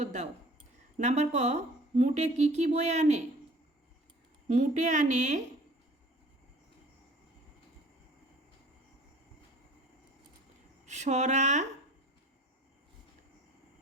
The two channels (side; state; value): both; normal; correlation 0.49